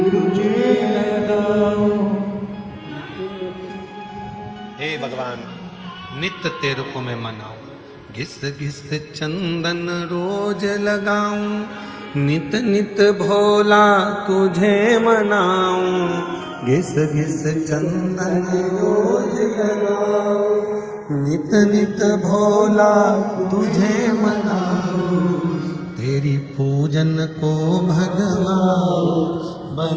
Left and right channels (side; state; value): both; identical; correlation 1.00